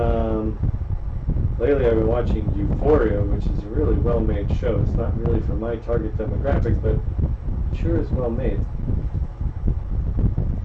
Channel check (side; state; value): both; identical; correlation 1.00